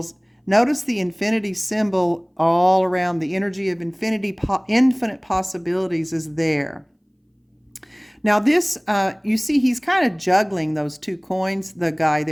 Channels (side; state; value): both; identical; correlation 1.00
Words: notice the infinity symbol all around. The energy of infinite possibilities is there. Now this, you see he's kind of juggling those two coins, the guy